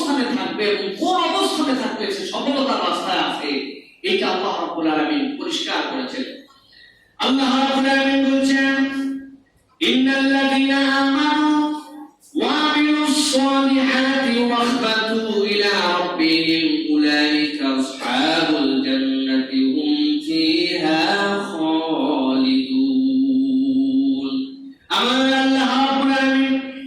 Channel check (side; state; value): both; identical; correlation 1.00